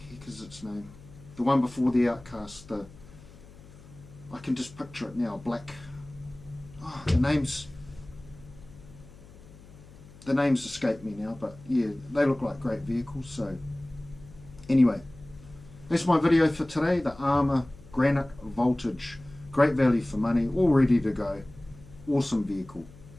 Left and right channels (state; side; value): noise; left; hum, 21 dB below the sound